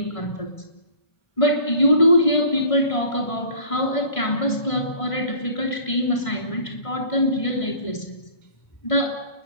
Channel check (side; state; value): right; late; 1.5 ms